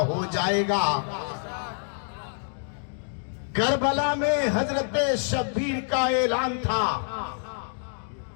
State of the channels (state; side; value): silent; right; digital silence